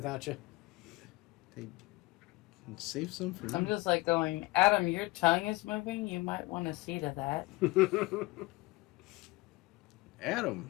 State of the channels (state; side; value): quieter; right; 21.7 dB